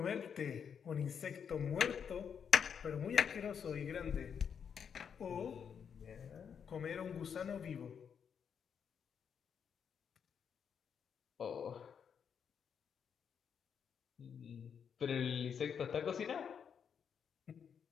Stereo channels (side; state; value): right; quieter; 7.3 dB